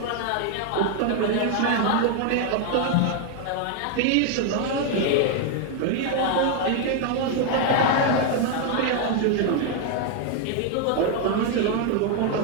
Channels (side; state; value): both; different; correlation 0.01